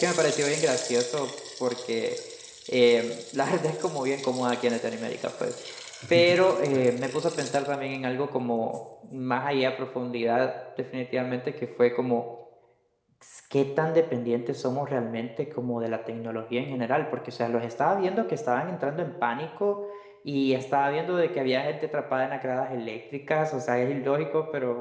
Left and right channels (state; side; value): identical; both; correlation 1.00